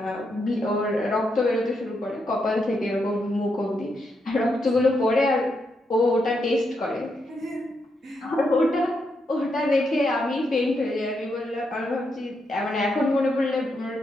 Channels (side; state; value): both; normal; correlation 0.81